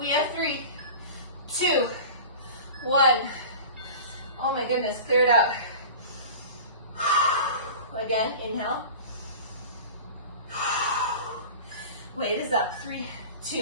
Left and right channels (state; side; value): inverted; both; correlation -0.36